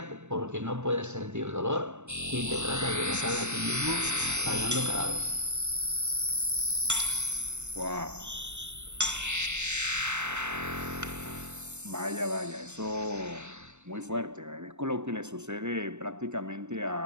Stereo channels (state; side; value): late; left; 0.83 ms